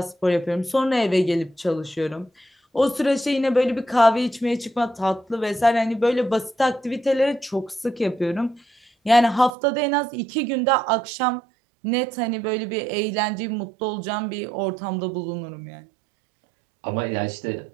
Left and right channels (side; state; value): left; drops out; at 9.5 s